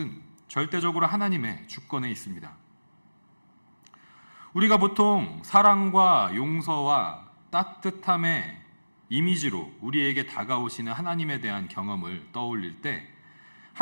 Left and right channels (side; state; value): both; inverted; correlation -1.00